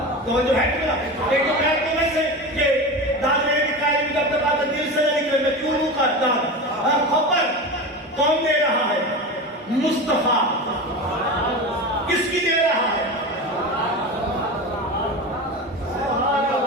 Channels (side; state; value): both; normal; correlation 0.26